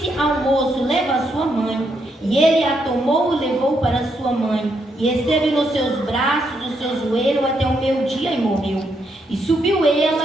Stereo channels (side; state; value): both; normal; correlation 0.78